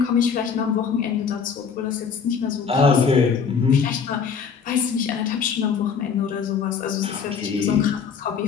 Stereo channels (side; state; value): right; quieter; 6.3 dB